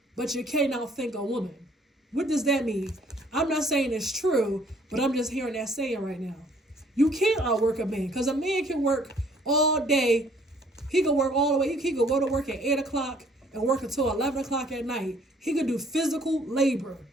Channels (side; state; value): both; normal; correlation 0.60